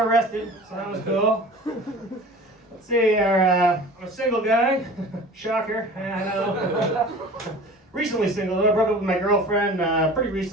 rested, so that was cool. Let's see, I'm a single guy. Shocker, I know. Recently single, I broke up with my girlfriend pretty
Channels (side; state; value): both; normal; correlation 0.41